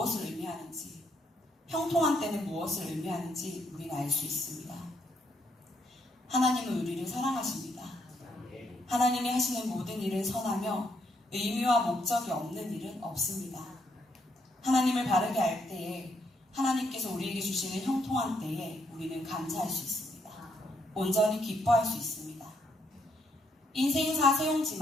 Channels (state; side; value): normal; both; correlation 0.74